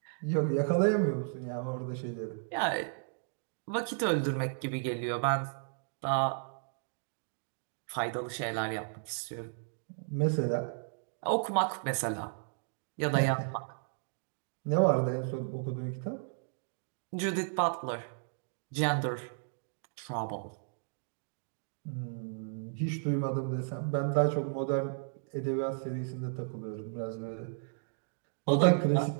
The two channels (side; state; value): left; silent; digital silence